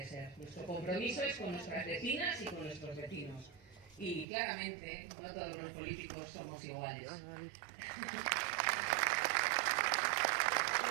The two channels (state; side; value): drops out; left; at 4.2 s